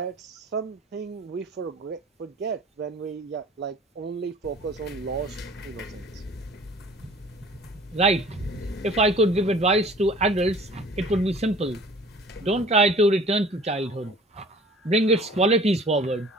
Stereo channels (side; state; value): both; normal; correlation 0.47